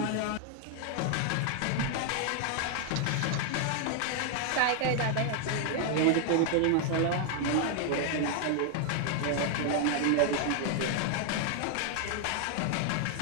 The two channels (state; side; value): different; both; correlation 0.00